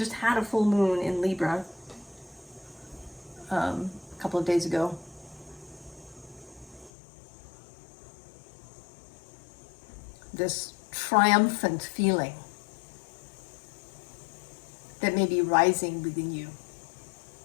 had a full moon in Libra a couple of days ago. This triumphant feeling that may be rising within you.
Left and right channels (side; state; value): right; drops out; at 6.9 s